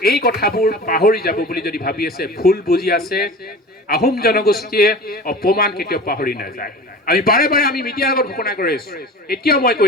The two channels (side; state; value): both; normal; correlation 0.37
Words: এই কথাবোৰ পাহৰি যাব বুলি যদি ভাবি আছে ভুল বুজি আছে আহোম জনগোষ্ঠীয়ে অপমান কেতিয়াও পাহৰি নাযায় আমি বাৰে বাৰে আমি মিডিয়াৰ আগত ঘোষণা কৰি আছো এতিয়াও মই